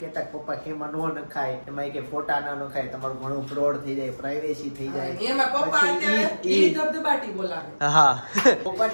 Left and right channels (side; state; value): both; inverted; correlation -1.00